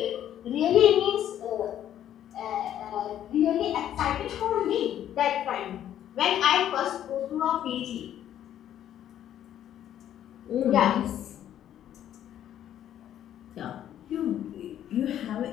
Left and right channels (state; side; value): quieter; right; 11.0 dB